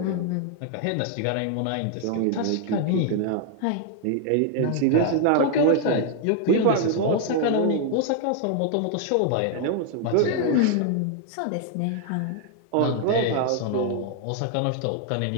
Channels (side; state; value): both; different; correlation 0.00